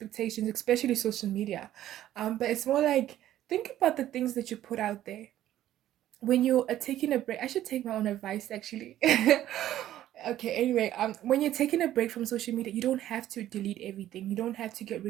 especially social media. But it's more like, think about the things that you put out there when you are taking a break. I should take my own advice actually. Okay, anyway, when you're taking a break from social media, you don't have to delete everything. You don't have to get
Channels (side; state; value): left; quieter; 12.8 dB